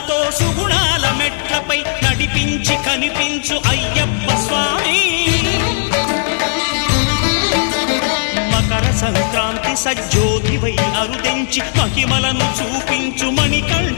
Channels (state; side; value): silent; right; digital silence